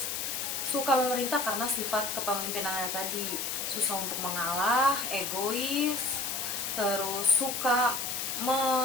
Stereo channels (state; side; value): noise; left; hiss, 2 dB below the sound